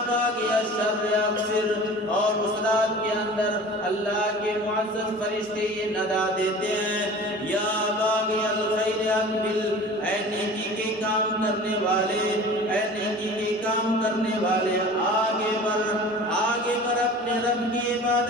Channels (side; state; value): both; normal; correlation 0.40